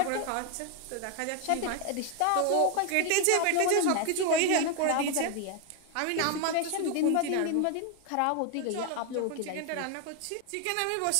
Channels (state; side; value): different; both; correlation 0.00